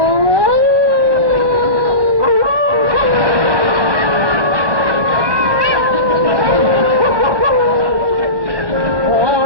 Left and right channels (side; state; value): left; late; 1.1 ms